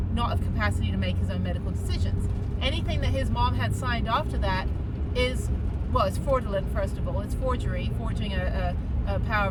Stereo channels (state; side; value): identical; both; correlation 1.00